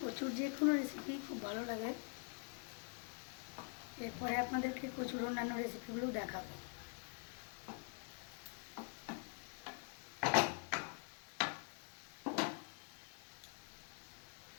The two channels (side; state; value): right; quieter; 38.8 dB